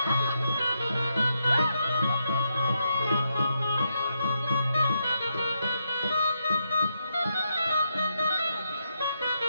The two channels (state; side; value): inverted; both; correlation -0.81